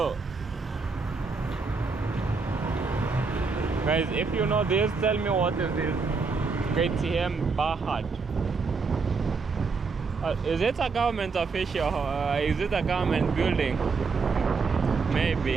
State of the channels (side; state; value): left; quieter; 4.6 dB